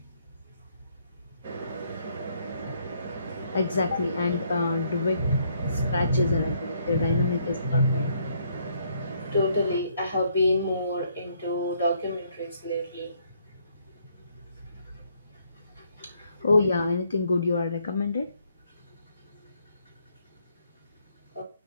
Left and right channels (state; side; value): inverted; both; correlation -0.70